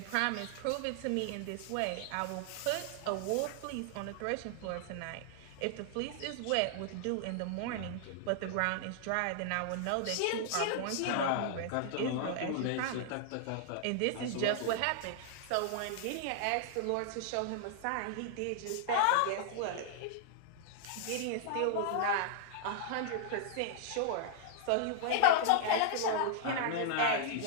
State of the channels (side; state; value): both; different; correlation -0.01